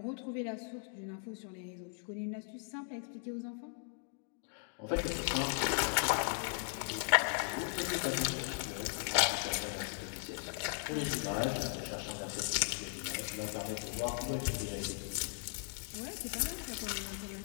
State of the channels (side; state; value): right; silent; 53 dB below the other